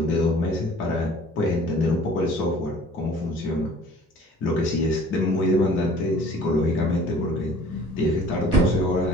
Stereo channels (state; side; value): normal; both; correlation 0.50